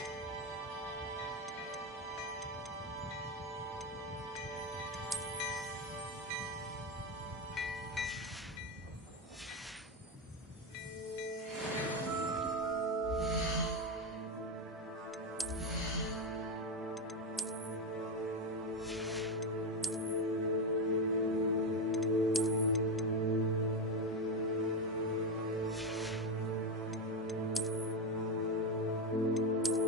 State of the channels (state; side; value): normal; both; correlation 0.11